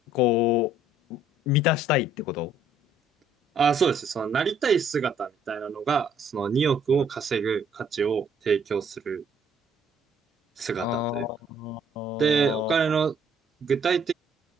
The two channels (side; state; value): both; normal; correlation 0.62